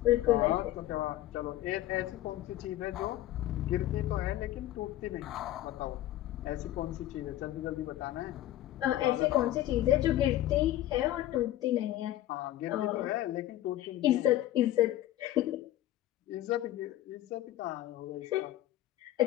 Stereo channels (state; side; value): quieter; right; 14.1 dB